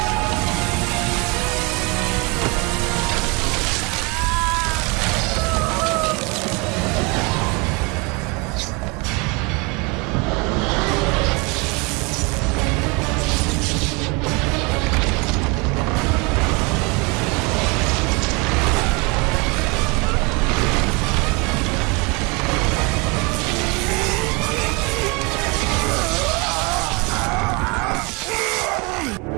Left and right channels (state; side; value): quieter; left; 28.7 dB